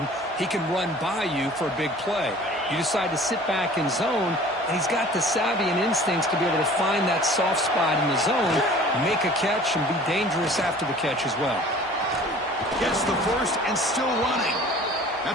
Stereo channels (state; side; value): normal; both; correlation 0.47